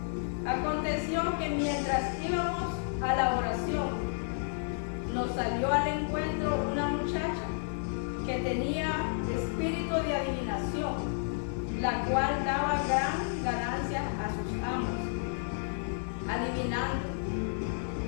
Aconteció que mientras íbamos a la oración, nos salió al encuentro una muchacha que tenía espíritu de adivinación, la cual daba gran ganancia a sus amos, adivinando.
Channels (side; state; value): right; silent; 57 dB below the other